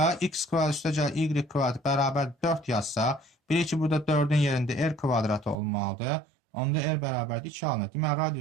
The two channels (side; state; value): left; drops out; at 5.6 s